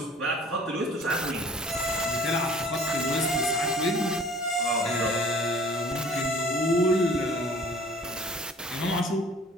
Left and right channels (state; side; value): normal; both; correlation 0.49